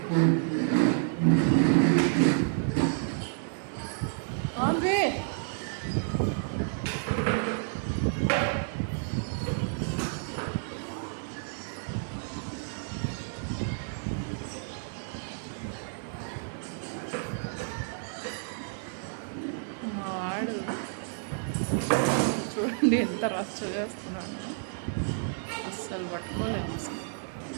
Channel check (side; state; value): left; silent; digital silence